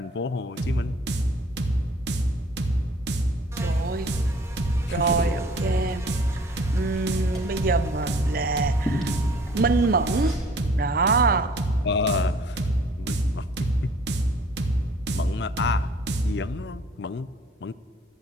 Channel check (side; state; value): both; normal; correlation 0.54